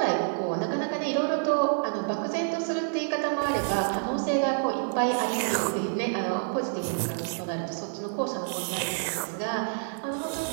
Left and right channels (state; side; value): silent; left; digital silence